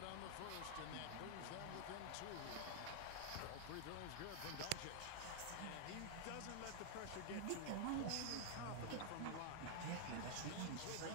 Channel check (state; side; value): different; both; correlation 0.00